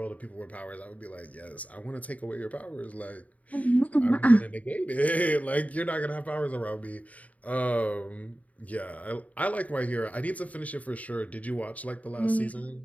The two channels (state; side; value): late; right; 0.070 ms